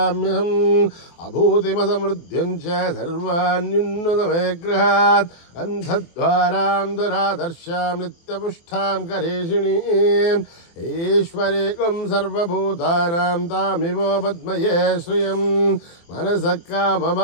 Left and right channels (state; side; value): late; right; 24 ms